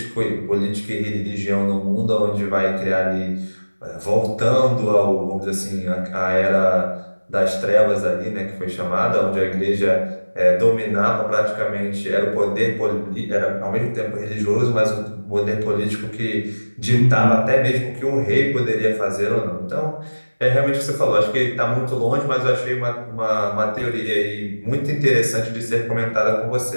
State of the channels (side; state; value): both; inverted; correlation -1.00